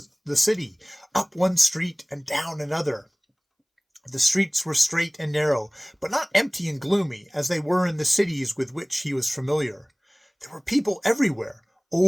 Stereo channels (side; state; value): both; identical; correlation 1.00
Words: the city, up one street and down another. The streets were straight and narrow, but not empty and gloomy, as they were in the cities with which he was familiar. There were people everywhere.